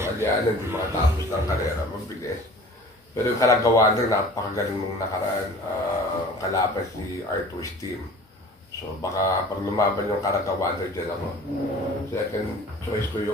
Aliana hindi makatapos ng karera, mabilis. Pero yung kalagawan rin, napakagaling nung nakaraan, kalaban si Arthur's team. So baka pag lumaban yung kalagawan rin dyan ako. Second choice ko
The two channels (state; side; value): normal; both; correlation 0.44